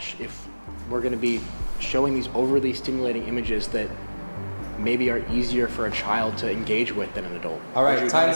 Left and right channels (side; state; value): both; inverted; correlation -1.00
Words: if we're going to be showing these overly stimulating images that maybe are easier for a child to engage with than an adult. All right,